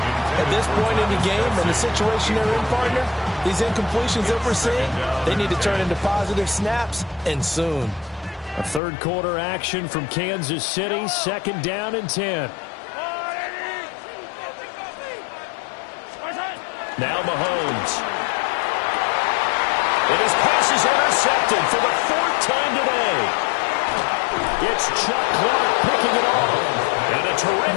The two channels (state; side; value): drops out; right; at 8.8 s